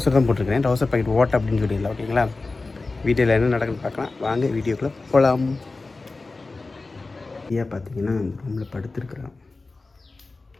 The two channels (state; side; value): quieter; right; 3.6 dB